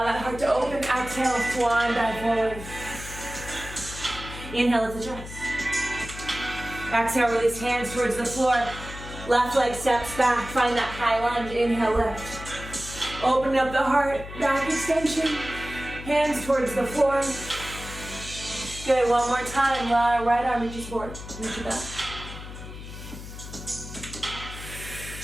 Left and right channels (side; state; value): left; noise; hum, 12 dB below the sound